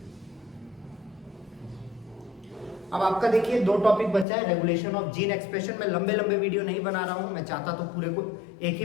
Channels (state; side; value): drops out; right; at 4.2 s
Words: अब आपका देखिए 2 टॉपिक बचा है, रेगुलेशन ऑफ जीन एक्सप्रेशन। मैं लंबे वीडियो नहीं बना रहा हूं, मैं चाहता तो पूरे को एक ही